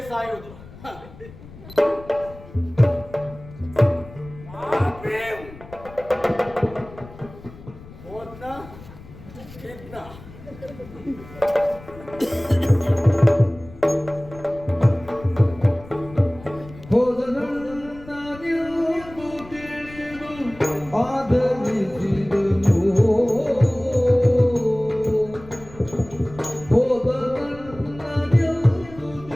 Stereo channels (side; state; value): left; noise; rumble, 18 dB below the sound